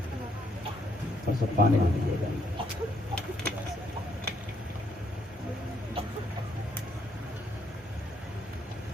پانی دیجیے گا۔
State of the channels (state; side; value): normal; both; correlation 0.71